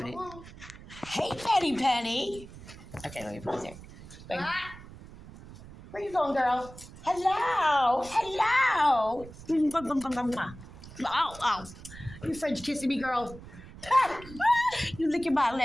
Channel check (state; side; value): noise; right; rumble, 17 dB below the sound